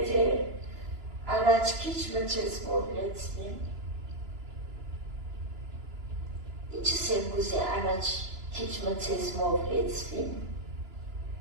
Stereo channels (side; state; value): left; late; 2.9 ms